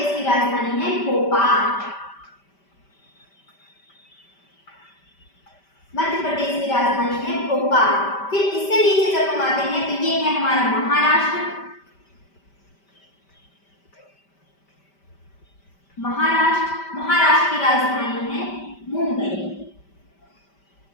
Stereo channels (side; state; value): right; late; 5.1 ms